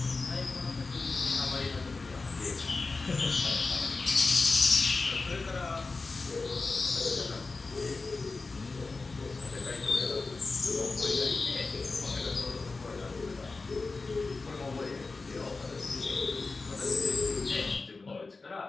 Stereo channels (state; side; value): quieter; right; 3.9 dB